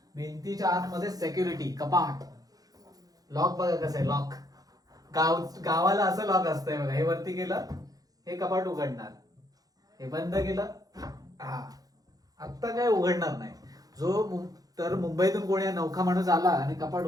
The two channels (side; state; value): left; late; 0.18 ms